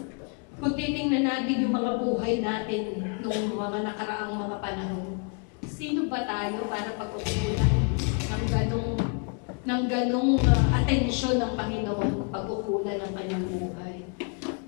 Kung titingnan natin yung mga buhay natin nung mga nakaraang mga panahon, sino ba tayo para pag-ukulan ng ganong atensyon ng Panginoon, pag-ukulan ng kanyang buhay.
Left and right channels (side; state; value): right; quieter; 37.3 dB